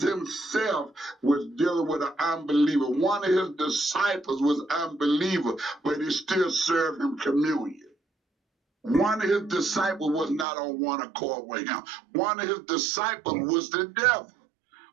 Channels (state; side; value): drops out; left; at 10.5 s